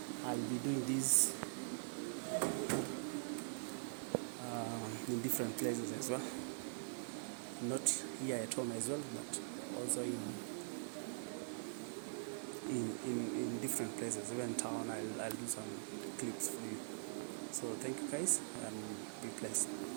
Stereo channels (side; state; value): left; silent; digital silence